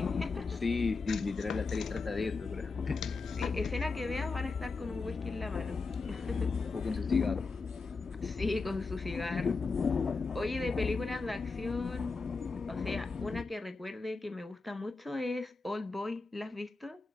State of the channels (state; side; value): quieter; right; 4.1 dB